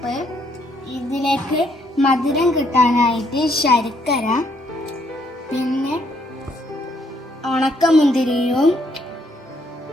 ഇതിലേക്ക് മധുരം കിട്ടാനായിട്ട് ശർക്കര, പിന്നെ ഉണക്കമുന്തിരിയും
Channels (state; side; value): normal; both; correlation 0.70